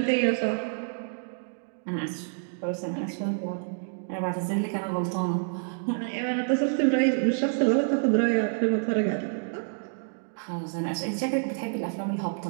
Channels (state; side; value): silent; left; digital silence